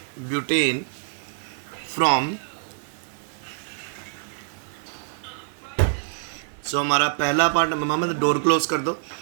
from. So हमारा पहला पार्ट, मोहम्मद डोर क्लोज कर दो।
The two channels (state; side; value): silent; left; digital silence